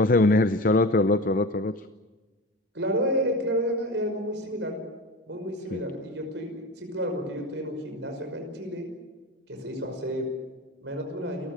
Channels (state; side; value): normal; both; correlation 0.30